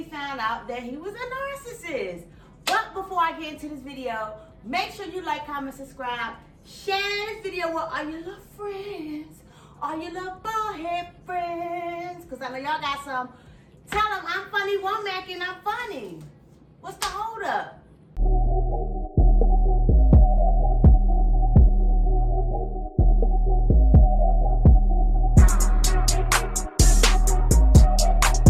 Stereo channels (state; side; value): identical; both; correlation 1.00